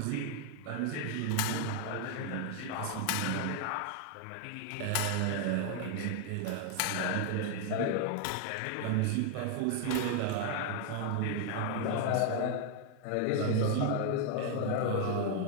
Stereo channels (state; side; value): different; both; correlation 0.01